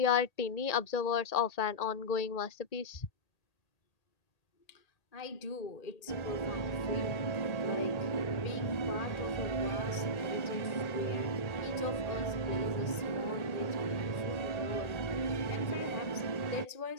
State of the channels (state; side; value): late; right; 1.8 ms